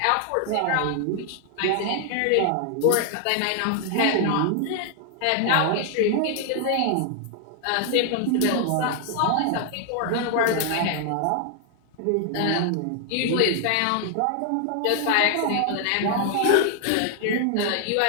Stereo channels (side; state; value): both; different; correlation 0.00